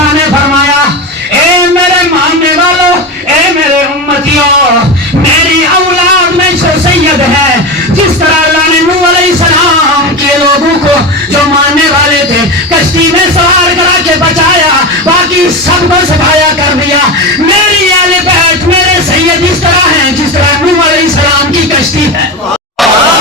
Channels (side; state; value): both; normal; correlation 0.21